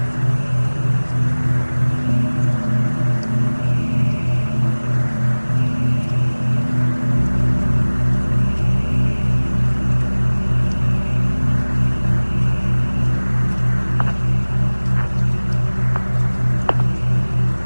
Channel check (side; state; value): both; inverted; correlation -1.00